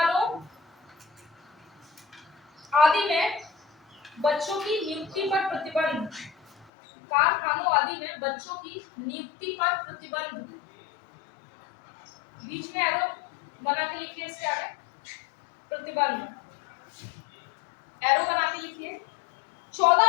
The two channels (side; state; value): right; drops out; at 6.7 s